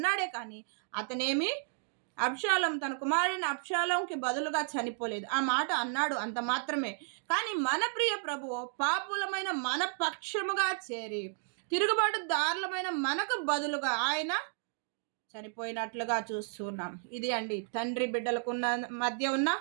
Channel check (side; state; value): left; silent; digital silence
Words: కానీ అతనేమి అబ్షాలోం తన కుమారుని అబ్షాలోంకి బదులుగా చనిపోలేదు. ఆ మాట అన్నాడు, అంత మాత్రమే. కానీ మన ప్రియ ప్రభువు పాపులమైన మన పక్షముగా చేరి తిరుగుబాటు దారులమైన మనకు బదులుగా ఆయన చనిపోయినట్లుగా చూస్తున్నాం. ఇది అండి తండ్రి బిడ్డలకు మధ్య ఉన్న